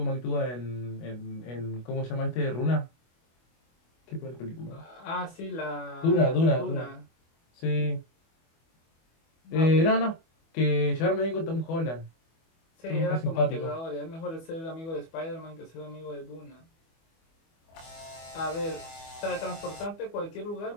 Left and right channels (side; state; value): right; late; 25 ms